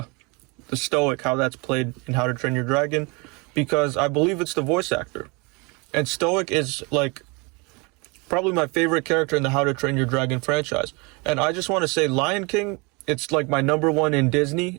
Stoic, how that's played in How to Train Your Dragon, because I believe it's the voice actor. And Stoic is like probably my favorite character in the How to Train Your Dragon franchise. And I just want to say Lion King, it's like my number one in Disney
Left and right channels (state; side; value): quieter; left; 29.0 dB